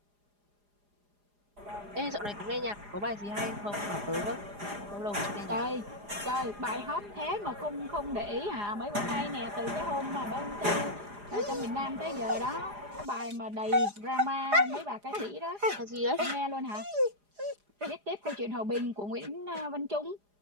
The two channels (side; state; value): left; late; 4.9 ms